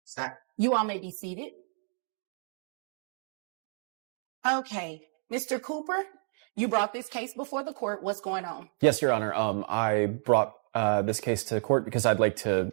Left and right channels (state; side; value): silent; left; 58 dB below the other